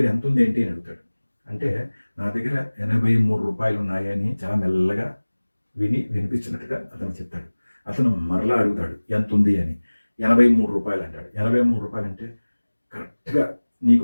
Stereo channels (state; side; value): inverted; both; correlation -1.00